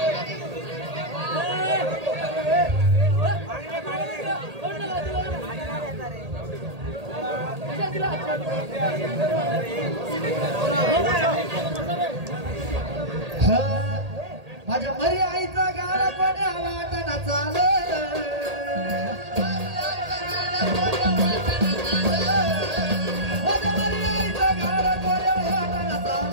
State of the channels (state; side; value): late; left; 1.8 ms